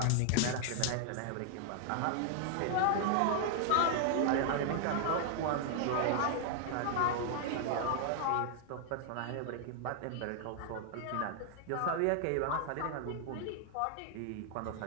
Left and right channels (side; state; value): both; different; correlation 0.00